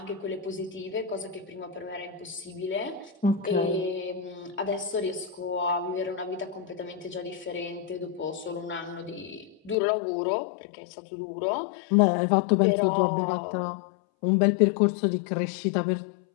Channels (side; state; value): right; drops out; at 9.8 s